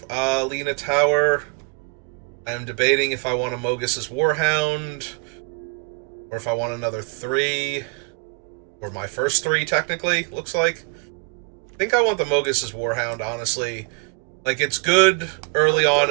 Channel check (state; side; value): quieter; left; 32.6 dB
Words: Lena Tower. I'm debating if I want a Mogus's Warhound, or if I want another 3, or my first 3, technically, looks like. I think I want the Mogus's Warhound, honestly. Like, it's good early on